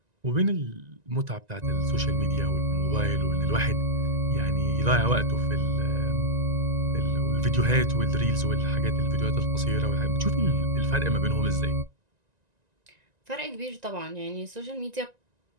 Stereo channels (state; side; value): late; left; 1.9 ms